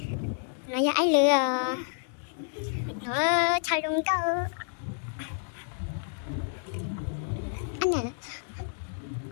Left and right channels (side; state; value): right; silent; digital silence